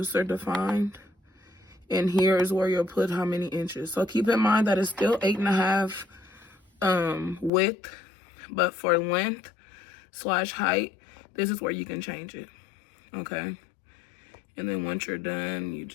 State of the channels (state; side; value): drops out; right; at 7.5 s